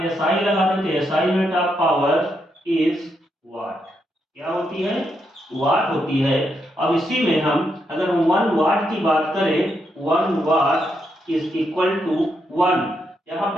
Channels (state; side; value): normal; both; correlation 0.80